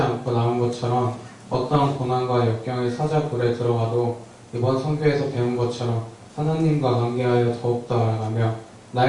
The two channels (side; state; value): both; identical; correlation 1.00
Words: 나온 것처럼 어떠한 고난과 역경의 사자굴에 들어가도 이번 선교에서 배운 것처럼 하나님과 관계하여 더욱더 알아가며